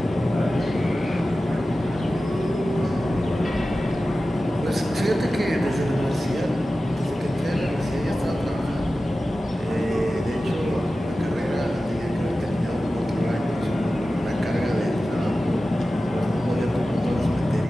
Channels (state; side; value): normal; both; correlation 0.95